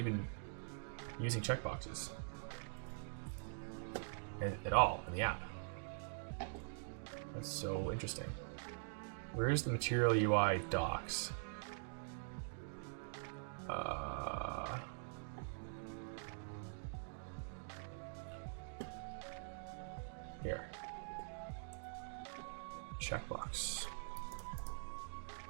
using checkboxes at all in the app. That's so interesting. Where is the material UI docs? Here. Checkbox.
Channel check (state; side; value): silent; left; digital silence